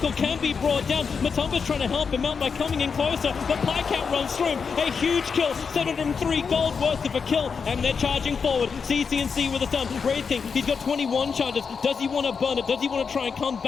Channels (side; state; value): right; quieter; 5.7 dB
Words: can be brought down. Matumba's trying to help him out by coming in closer. The Pycat runs through him. A huge kill. 703 gold worth of a kill. And they're charging forward. CCNC with a stun. Wraith King, he's got 21 charges. Does he want to burn it? Does he want to try and come